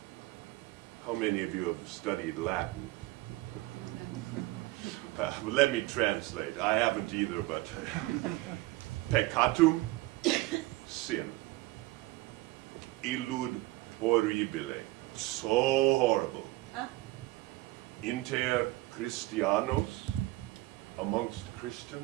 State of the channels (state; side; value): quieter; left; 19.6 dB